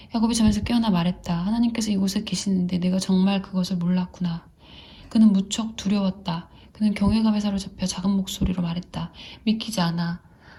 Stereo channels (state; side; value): identical; both; correlation 1.00